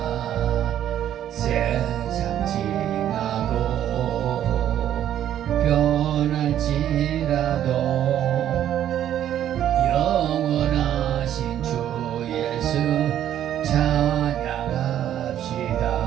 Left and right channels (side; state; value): left; quieter; 11.0 dB